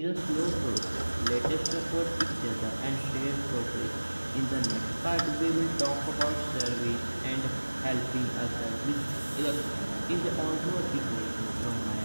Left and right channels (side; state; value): both; inverted; correlation -1.00